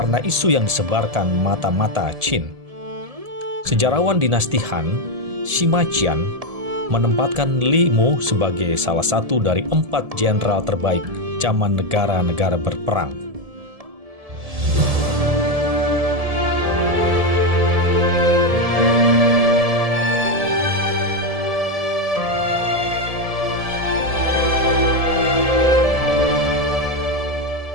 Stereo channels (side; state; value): left; late; 1.7 ms